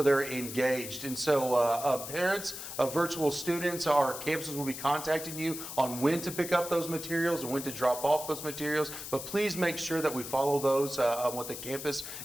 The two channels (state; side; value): noise; left; hiss, 9 dB below the sound